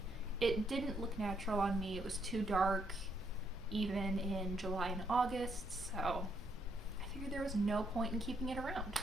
It didn't look natural on me. It was too dark, even in July and August, so I figured there was no point in keeping it around.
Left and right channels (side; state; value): both; normal; correlation 0.74